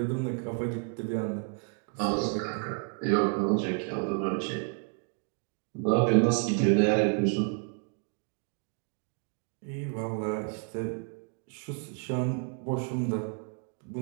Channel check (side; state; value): left; quieter; 36.0 dB